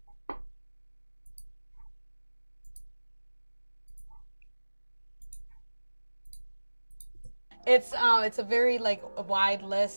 It's a very like a wide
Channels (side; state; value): both; inverted; correlation -1.00